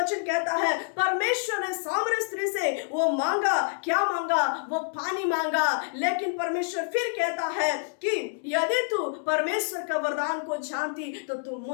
कहता है, परमेश्वर ने सामरी स्त्री से वो मांगा, क्या मांगा? वो पानी मांगा। लेकिन परमेश्वर फिर कहता है कि यदि तू परमेश्वर का वरदान को जानती तो तू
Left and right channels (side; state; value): right; silent; digital silence